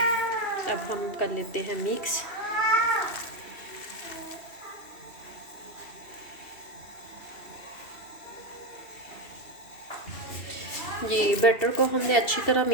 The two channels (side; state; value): right; late; 2.7 ms